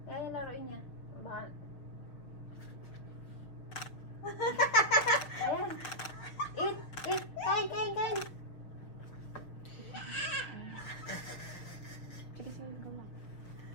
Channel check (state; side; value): late; right; 6.1 ms